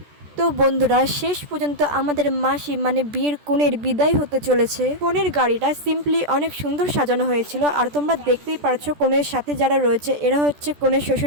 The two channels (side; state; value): left; late; 14 ms